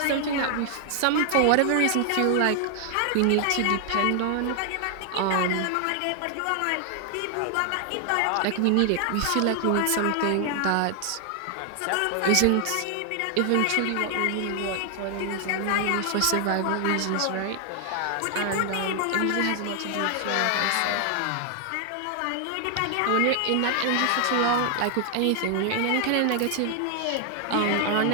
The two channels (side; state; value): both; different; correlation 0.00